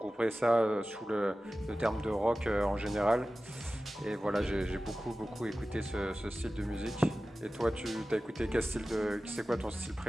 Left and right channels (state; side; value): normal; both; correlation 0.96